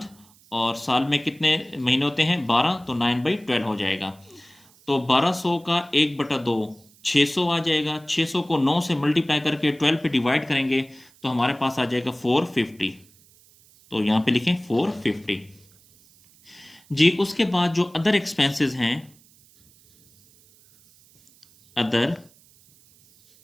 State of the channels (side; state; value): right; noise; hiss, 28 dB below the sound